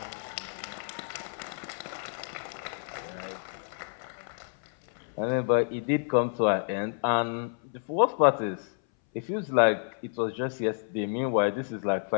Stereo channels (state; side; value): silent; right; 58 dB below the other